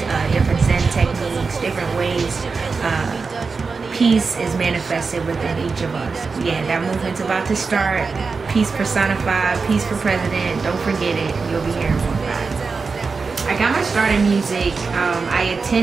different Zen techniques, different ways peace is manifested within each of us. Yeah, that movement's about to start. Peace personified, peace for president. Don't forget it. You'll be hearing more about it. I got my start in music. I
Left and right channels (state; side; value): quieter; left; 4.7 dB